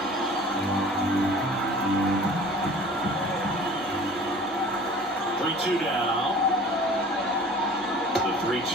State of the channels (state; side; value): normal; both; correlation 0.46